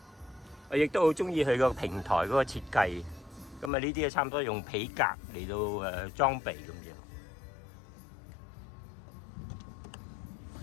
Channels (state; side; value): drops out; right; at 3.7 s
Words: 我亦都好中意佢個平台嗰個設計。咁呢啲差唔多用皮革嚟到裝備咁樣。